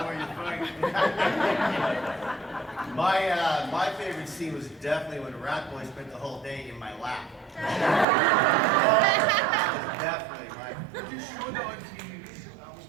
My favorite scene was definitely when Rat Boy spent the whole day in my lap. Definitely my. You showed that on TV. I was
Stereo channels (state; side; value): drops out; left; at 8.1 s